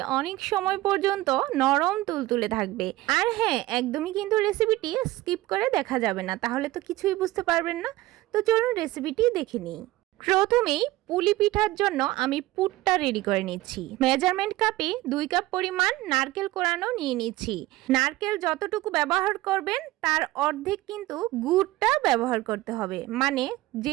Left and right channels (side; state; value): left; quieter; 17.8 dB